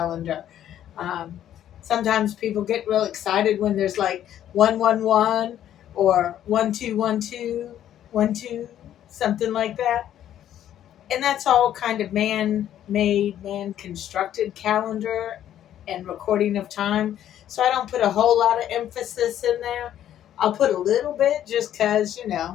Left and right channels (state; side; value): quieter; right; 11.2 dB